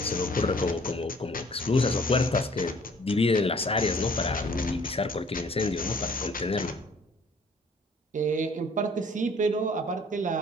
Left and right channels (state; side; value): normal; both; correlation 0.56